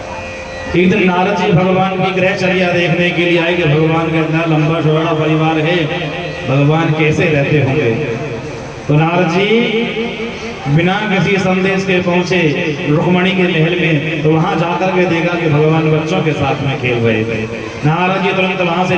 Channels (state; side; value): identical; both; correlation 1.00